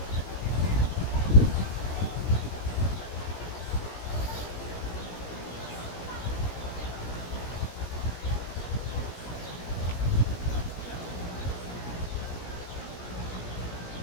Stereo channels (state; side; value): late; right; 17 ms